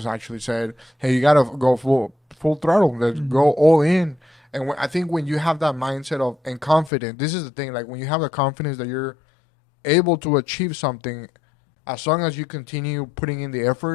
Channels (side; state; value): right; drops out; at 6.9 s